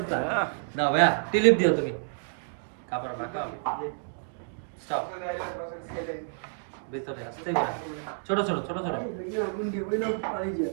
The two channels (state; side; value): silent; left; digital silence